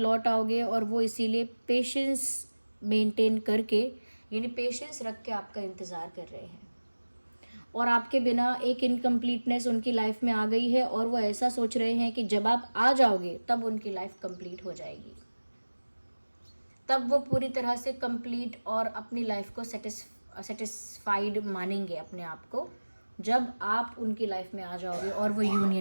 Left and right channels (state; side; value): inverted; both; correlation -1.00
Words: आओगे और वो इसीलिए पेशेंस मेंटेन करके, यानी पेशेंस रख के आपका इंतज़ार कर रहे हैं। और आपके बिना एक इनकम्प्लीटनेस उनकी लाइफ में आ गई है और वो ऐसा सोच रहे हैं कि जब आप आ जाओगे तब उनकी लाइफ कंप्लीट हो जाएगी, तब वो पूरी तरह से कंप्लीट और अपनी लाइफ को सेटिस्फाइड मानेंगे अपने आप को, जब आप उनकी लाइफ में आ जाओगे और वो